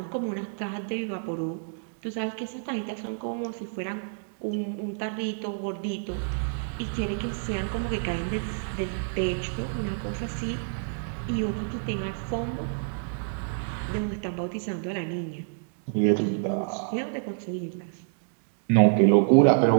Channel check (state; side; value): silent; left; digital silence